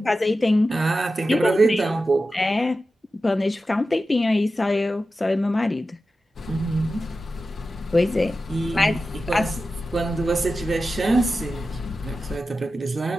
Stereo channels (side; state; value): both; normal; correlation 0.92